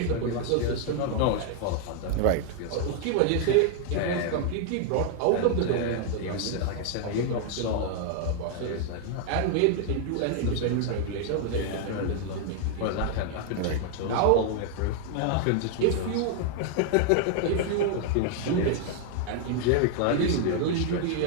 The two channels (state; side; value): different; both; correlation 0.00